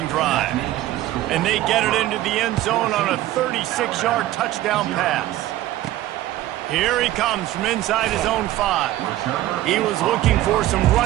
drive. And they get it into the end zone on a 36-yard touchdown pass. Here he comes from inside his own 5. He was looking for some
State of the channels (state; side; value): quieter; left; 14.8 dB